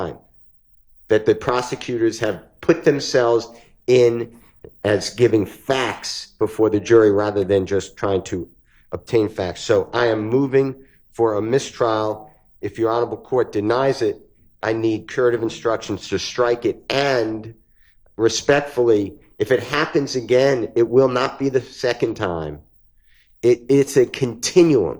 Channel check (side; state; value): both; identical; correlation 1.00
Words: that the prosecutors have put themselves in as giving facts before the jury rather than just trying to obtain facts. So I am moving for a mistrial. If your honorable court denies it, I need curative instructions to strike it, and respectfully, if it happens again, it will not be the second time. It's a continuum.